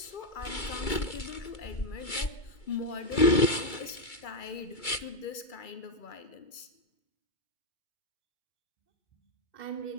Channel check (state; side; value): late; right; 2.3 ms